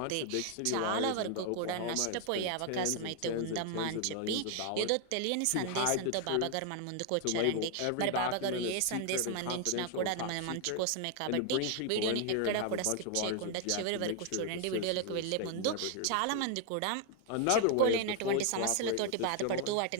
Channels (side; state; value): both; different; correlation 0.00